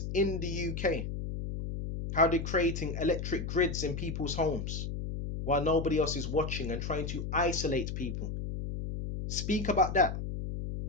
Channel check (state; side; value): noise; left; hum, 5 dB below the sound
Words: in the UK, how they're creating electric grids in people's homes while nobody else is watching and trying to isolate people. Speak about that.